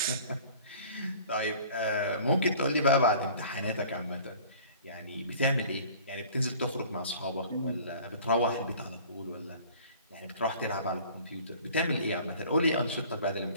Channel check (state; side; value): inverted; both; correlation -0.48